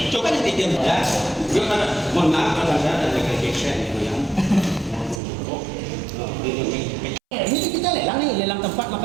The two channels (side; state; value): left; drops out; at 5.2 s